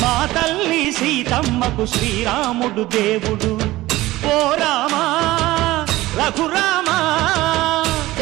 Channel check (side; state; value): left; quieter; 17.6 dB